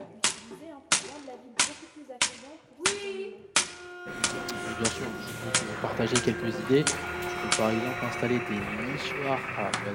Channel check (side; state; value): both; identical; correlation 1.00